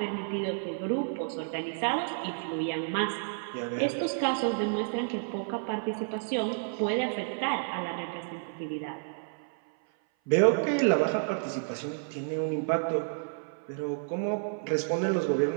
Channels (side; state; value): left; silent; 56 dB below the other